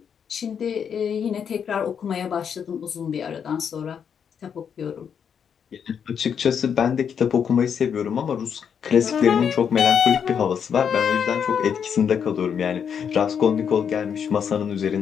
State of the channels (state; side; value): quieter; right; 7.5 dB